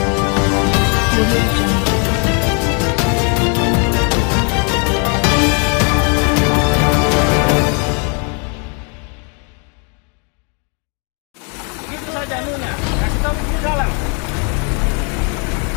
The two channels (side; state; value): right; quieter; 37.3 dB